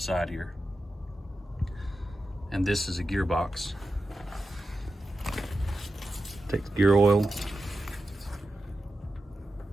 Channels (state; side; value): normal; both; correlation 0.91